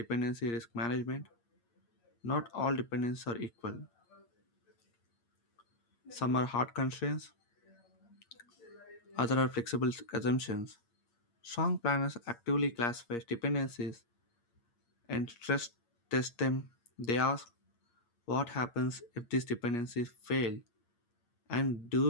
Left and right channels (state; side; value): late; right; 8.5 ms